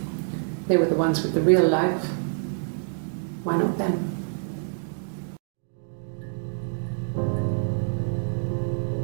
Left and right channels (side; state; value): left; silent; digital silence